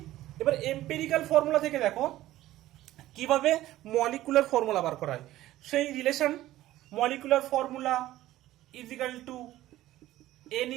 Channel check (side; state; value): left; quieter; 15.1 dB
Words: এবার এম্পেরিক্যাল ফর্মুলা থেকে দেখো কিভাবে মলিকুলার ফর্মুলা বার করা হয়, সেই relation molecular formula is equal to n